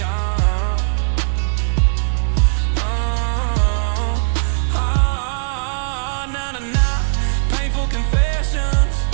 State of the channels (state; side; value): silent; left; digital silence